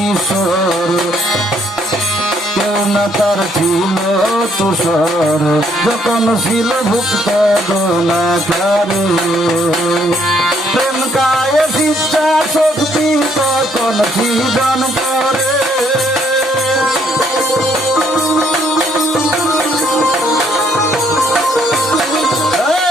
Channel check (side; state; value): both; normal; correlation 0.68